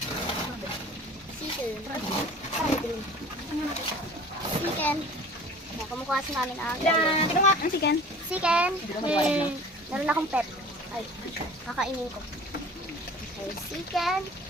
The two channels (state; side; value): normal; both; correlation 0.44